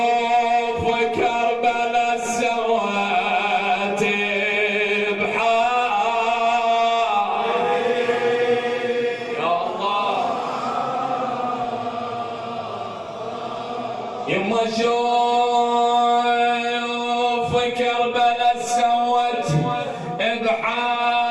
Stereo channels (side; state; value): both; identical; correlation 1.00